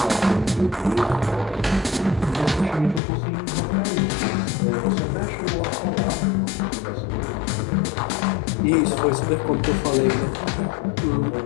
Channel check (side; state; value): right; drops out; at 3.0 s